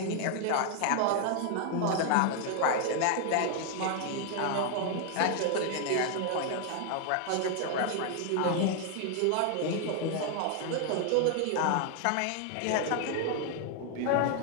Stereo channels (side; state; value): both; different; correlation 0.00